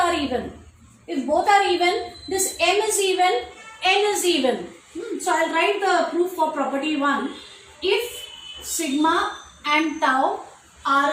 even. If both are even, this m is even, n is even. So I'll write the proof for property 1. If sigma and tau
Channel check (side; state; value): both; identical; correlation 1.00